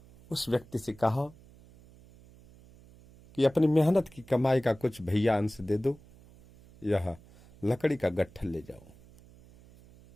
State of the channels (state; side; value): noise; right; hum, 24 dB below the sound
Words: उस व्यक्ति से कहा कि अपनी मेहनत की कमाई का कुछ भैया अंश दे दो, यह लकड़ी का गट्ठर ले जाओ।